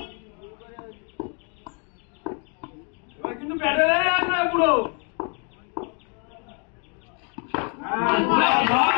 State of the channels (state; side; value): quieter; right; 38.3 dB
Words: কিন্তু ব্যাটে আর না পুরো